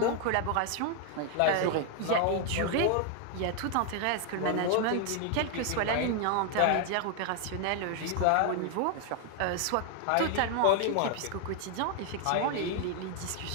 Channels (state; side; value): different; both; correlation 0.00